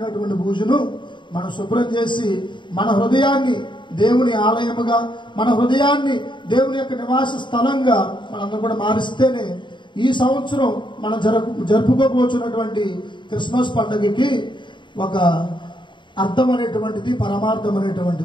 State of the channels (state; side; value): late; right; 0.23 ms